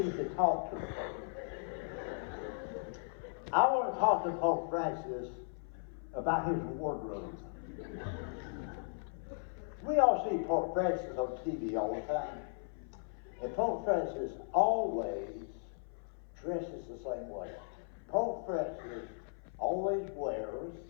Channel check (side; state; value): right; silent; 53 dB below the other